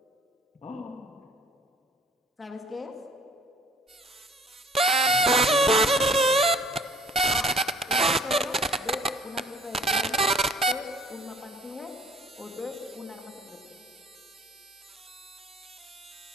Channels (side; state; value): both; normal; correlation 0.55